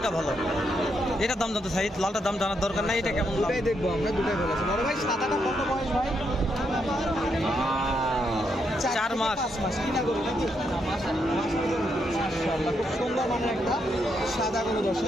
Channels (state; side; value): normal; both; correlation 0.79